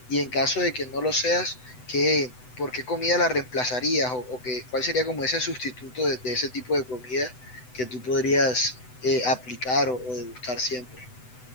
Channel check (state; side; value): late; right; 8.0 ms